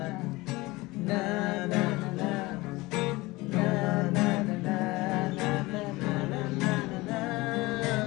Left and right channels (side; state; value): right; quieter; 21.4 dB